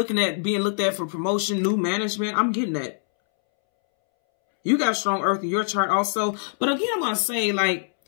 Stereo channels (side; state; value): right; silent; 63 dB below the other